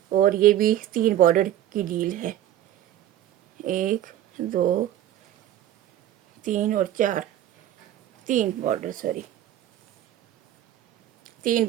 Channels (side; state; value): left; quieter; 12.2 dB